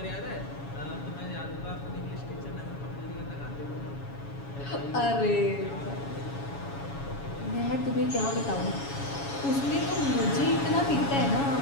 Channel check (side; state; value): right; late; 7.2 ms